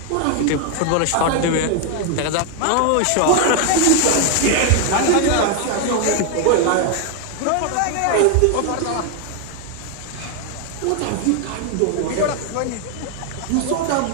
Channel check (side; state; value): both; different; correlation 0.01